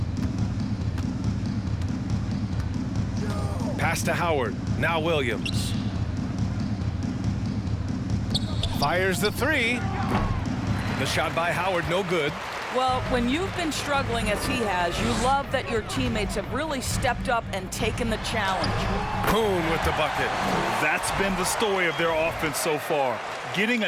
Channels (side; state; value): both; identical; correlation 1.00